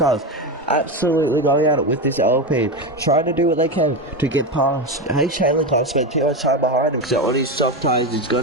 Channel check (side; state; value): both; normal; correlation 0.16